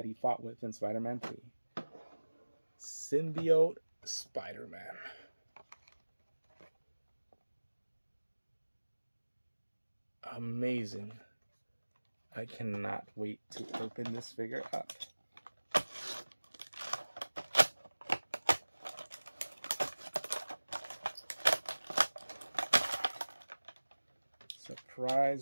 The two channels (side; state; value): both; inverted; correlation -1.00